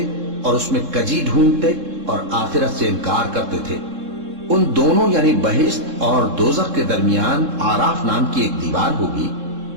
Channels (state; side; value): late; left; 3.7 ms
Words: اور اس میں کجی ڈھونڈتے اور آخرت سے انکار کرتے تھے۔ ان دونوں یعنی بہشت اور دوزخ کے درمیان آراف نام کی ایک دیوار ہوگی،